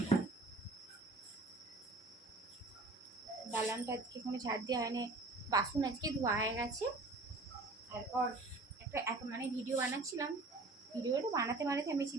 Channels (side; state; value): left; quieter; 3.2 dB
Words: দালানটা আজকে কোনো ঝাড় দেওয়া হয়নি, বাসন আজকে ধোয়া হয়ে গেছে। তারপর একটা মানে ভিডিও বানাচ্ছিলাম, ভিডিওটা বানাতে আমি